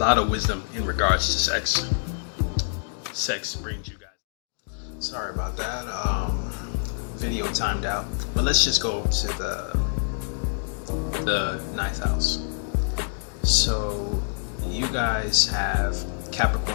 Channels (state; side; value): silent; right; digital silence